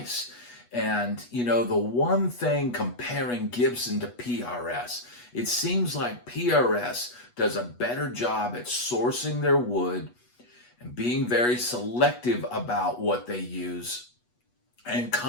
And, the one thing comparing Gibson to PRS, it seems like PRS does a better job at sourcing their wood and being very selective about what they use, and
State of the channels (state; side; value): late; right; 8.2 ms